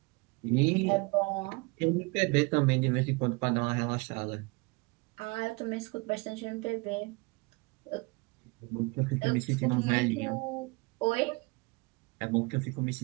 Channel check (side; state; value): left; quieter; 27.6 dB